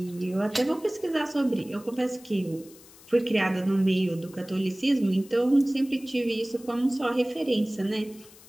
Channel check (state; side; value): noise; left; hiss, 22 dB below the sound